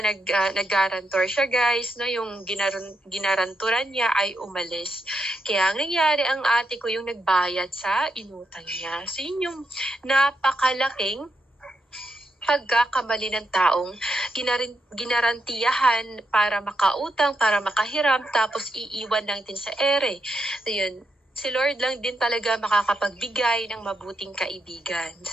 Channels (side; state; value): both; normal; correlation 0.82